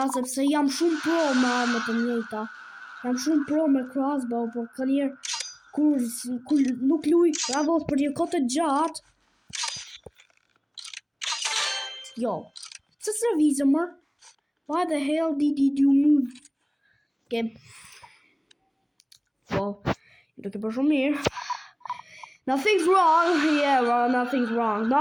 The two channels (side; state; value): both; identical; correlation 1.00